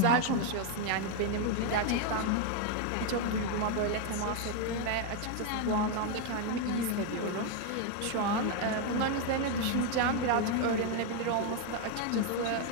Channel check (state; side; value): different; both; correlation 0.01